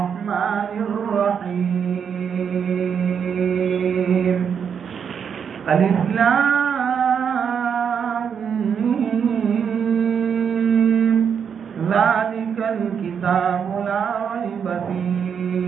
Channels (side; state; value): left; quieter; 7.2 dB